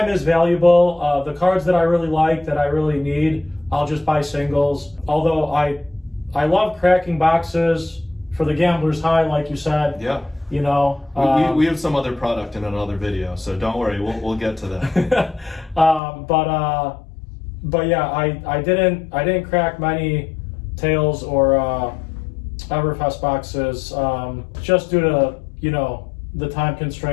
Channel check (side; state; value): right; drops out; at 16.0 s